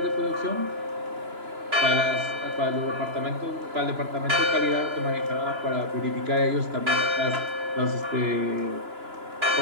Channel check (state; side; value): late; left; 2.9 ms